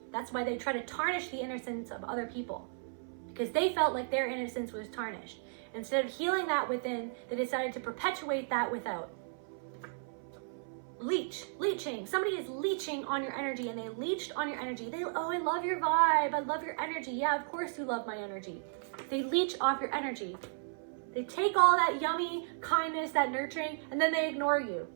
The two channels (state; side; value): silent; left; 55 dB below the other